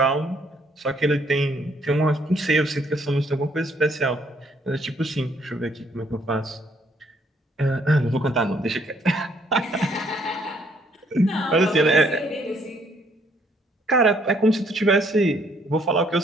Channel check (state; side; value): normal; both; correlation 0.67